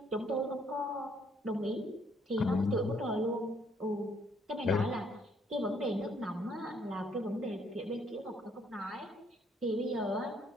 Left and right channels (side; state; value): both; normal; correlation 0.67